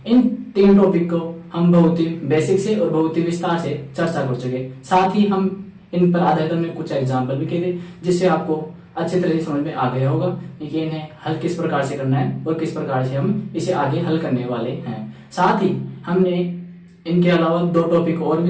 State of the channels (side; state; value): both; identical; correlation 1.00